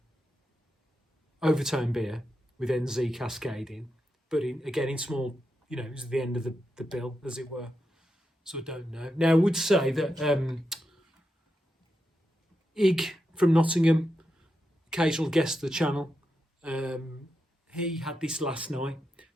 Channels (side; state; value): both; normal; correlation 0.87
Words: Overtone beer with NZ Cascade in, but again in small, it was the end of the bill, as it were. So I don't know. Now I would say that Ig from Nottingham, occasional guest of the channel, he had this last night